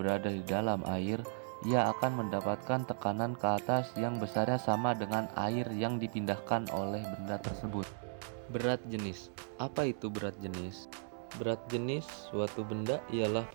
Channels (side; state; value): left; silent; 54 dB below the other